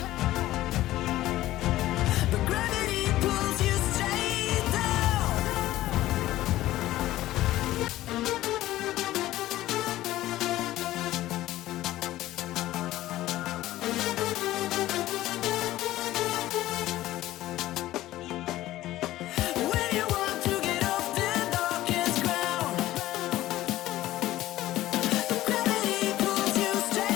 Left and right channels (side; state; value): right; quieter; 15.4 dB